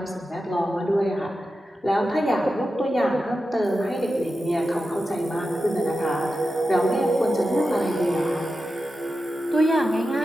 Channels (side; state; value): both; normal; correlation 0.91